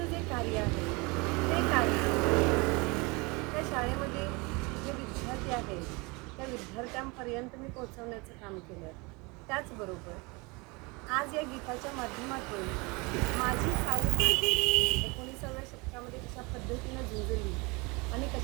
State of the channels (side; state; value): left; quieter; 27.1 dB